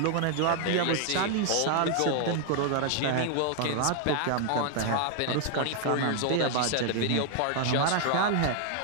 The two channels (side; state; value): both; different; correlation 0.00